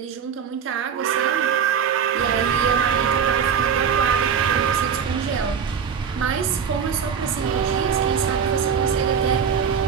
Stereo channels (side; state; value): left; quieter; 7.2 dB